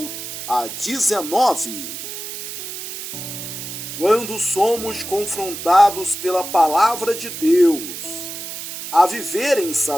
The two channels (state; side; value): noise; right; hiss, 8 dB below the sound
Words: a 19. Quando somos confrontados pela palavra de Deus a viver em